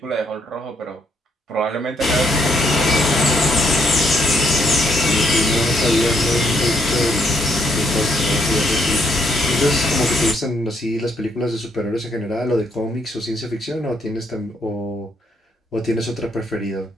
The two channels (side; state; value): both; normal; correlation 0.72